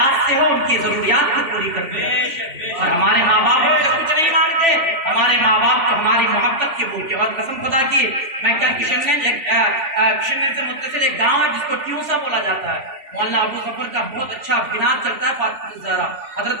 سے ہو ان کی ضروریات کو پوری کرتے ہیں. اور ہمارے ماں باپ ہم سے کچھ نہیں مانگتے, ہمارے ماں باپ کو ہماری محبت کے بھوکے. اور قسم خدا کی میں کل کشن سے متصل ایک گاؤں ہے جس کو ٹیوسا بولا جاتا ہے, مولانا ابو ظفر کا بہت اچھا بناد چلتا ہے, فاطمہ الزہرا حضرت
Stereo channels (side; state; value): left; late; 3.1 ms